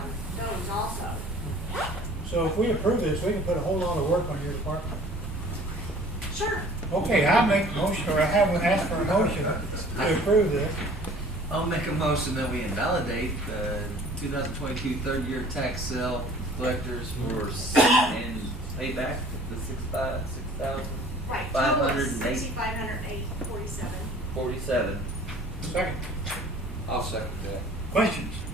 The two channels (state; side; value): normal; both; correlation 0.50